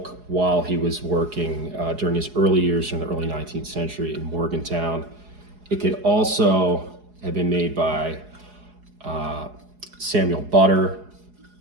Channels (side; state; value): left; late; 4.8 ms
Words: while he was working during his early years in the early 19th century in Morgantown. It could also have been made by Samuel Butter,